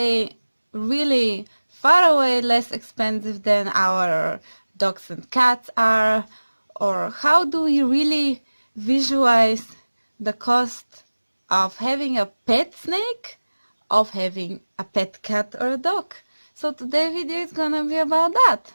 really far away less expensive than our dogs and cats are, or how do we really visualize the cost of having a pet snake, of having a pet cat or a dog. So today's video is gonna be about that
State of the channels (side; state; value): both; inverted; correlation -1.00